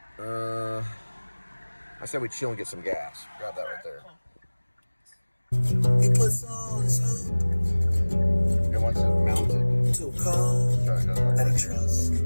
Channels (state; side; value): inverted; both; correlation -1.00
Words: I said we chill and get some gas. Grab that right there. He puts all his hope It wants it mounted. to a call that he trusts.